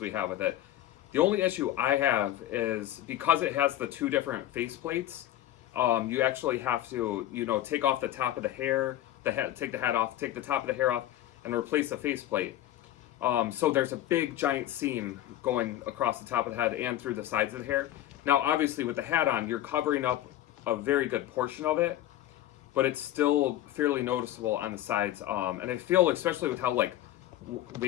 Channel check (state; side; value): quieter; right; 13.3 dB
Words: have with it. The only issue I have is because it has the two different face plates. You actually have to, take off the top of the hair, take the hat off, take the top of the hair off, and replace the faceplate. So there's a big giant seam going across the top of the head and through the sides of the hair. Now, obviously, with the hat on, you're covering up a very good portion of it, but it's still fairly noticeable on the sides. And I feel, especially with how like